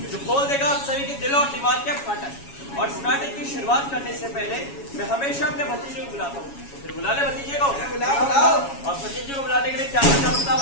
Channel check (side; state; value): right; late; 7.2 ms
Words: जो खोल देगा आप सभी के दिल और दिमाग के फाटक। और इस नाटक की शुरुआत करने से पहले मैं हमेशा अपने भतीजे को बुलाता हूँ। फिर बुला ले भतीजे को। बुलाओ। और भतीजे को बुलाने के लिए क्या करना पड़ता है